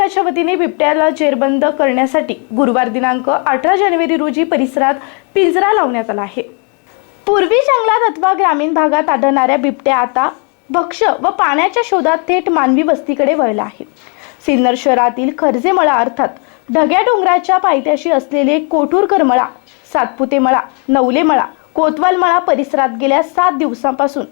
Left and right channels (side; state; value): right; quieter; 37.6 dB